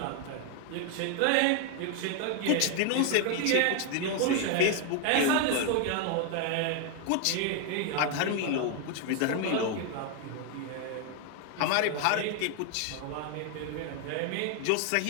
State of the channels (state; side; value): different; both; correlation 0.01